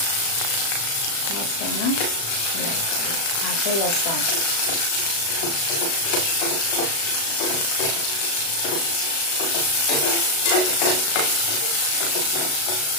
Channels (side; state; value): right; late; 36 ms